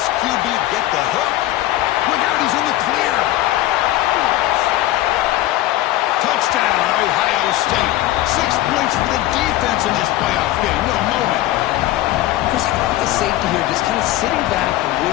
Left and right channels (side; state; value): right; quieter; 15.2 dB